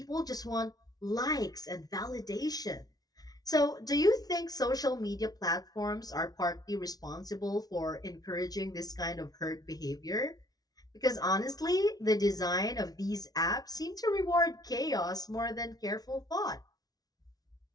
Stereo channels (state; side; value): late; right; 0.19 ms